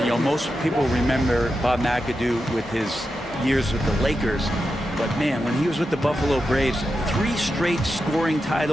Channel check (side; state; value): both; normal; correlation 0.89